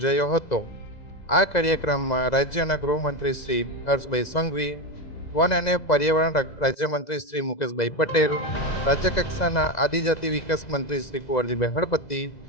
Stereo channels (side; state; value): right; late; 2.0 ms